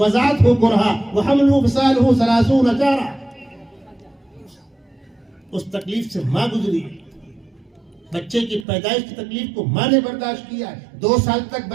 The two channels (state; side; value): drops out; left; at 8.7 s